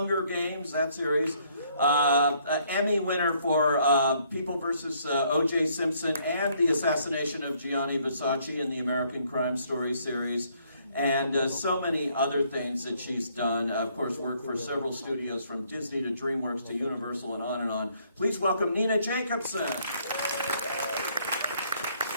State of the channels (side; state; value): both; inverted; correlation -0.67